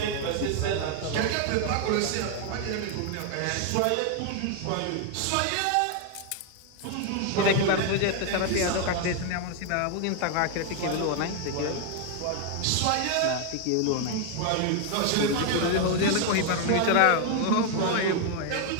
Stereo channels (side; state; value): both; different; correlation 0.00